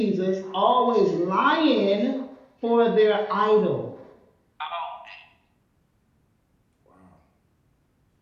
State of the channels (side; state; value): both; identical; correlation 1.00